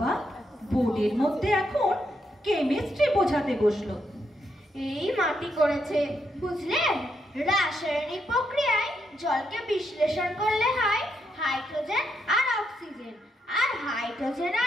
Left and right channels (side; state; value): both; normal; correlation 0.80